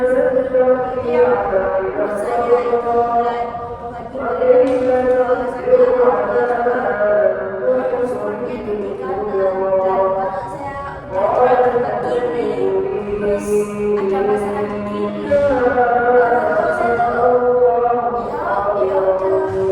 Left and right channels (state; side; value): identical; both; correlation 1.00